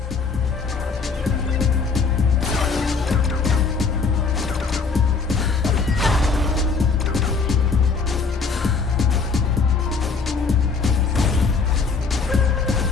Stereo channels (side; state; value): right; quieter; 4.8 dB